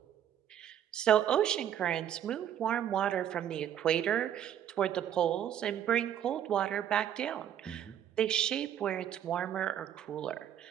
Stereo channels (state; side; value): quieter; left; 10.1 dB